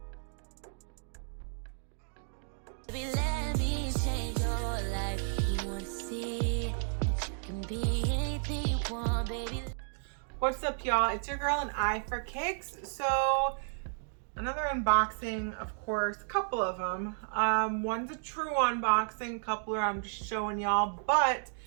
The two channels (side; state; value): left; silent; digital silence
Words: Let me change your life. You want to see that you can be anything you want, baby. What's up, y'all? It's your girl AnEyeIVKicks. So another unboxing, of course, a couple of them. One's a true unboxing, a couple are I'm just showing y'all, but